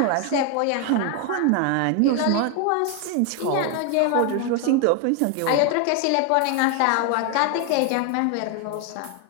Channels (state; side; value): different; both; correlation 0.01